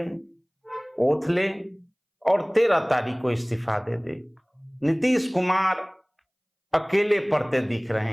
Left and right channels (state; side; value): identical; both; correlation 1.00